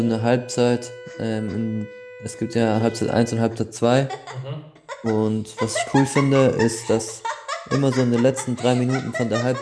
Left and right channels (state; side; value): identical; both; correlation 1.00